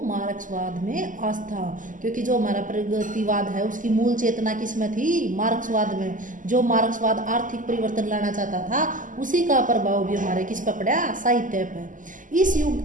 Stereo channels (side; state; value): left; late; 0.38 ms